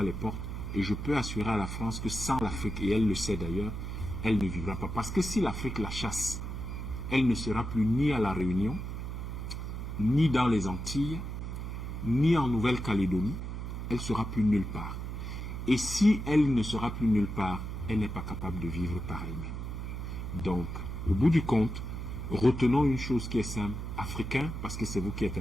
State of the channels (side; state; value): right; noise; hum, 5 dB below the sound